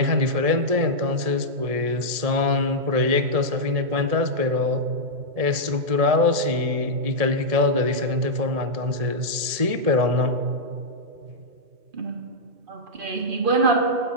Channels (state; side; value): late; left; 1.8 ms